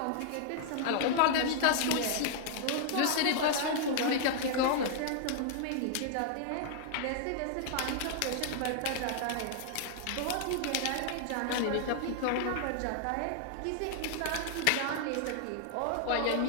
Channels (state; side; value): different; both; correlation -0.01